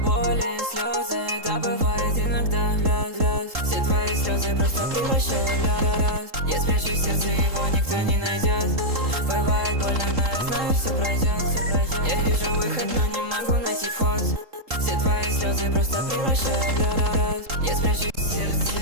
слезы, да бывает иногда. Все твои слезы просто превращаю в лед. Я спрячу сердце, его никто не найдет. Бывает больно, но я знаю, все пройдет. Я вижу выход, но не могу найти вход. Все твои слезы просто превращаю в лед.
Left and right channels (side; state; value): left; late; 3.7 ms